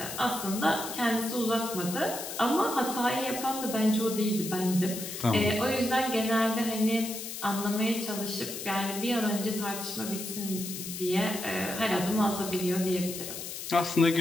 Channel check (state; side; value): noise; left; hiss, 8 dB below the sound